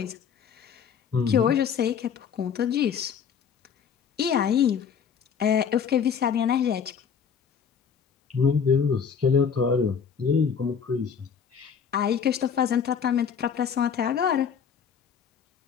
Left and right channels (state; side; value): quieter; right; 7.0 dB